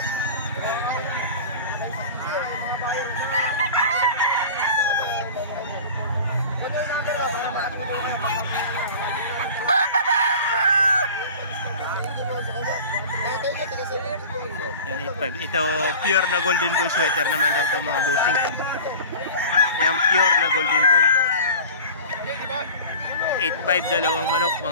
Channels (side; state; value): both; inverted; correlation -0.37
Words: Yan, 8,500. Ito pure na golden boy sweater naman daw ito mga bossing. Yan, pure na golden boy. 8,500 dalawang manok